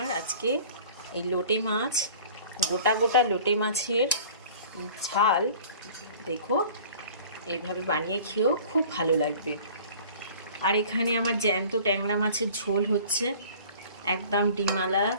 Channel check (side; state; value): both; inverted; correlation -0.46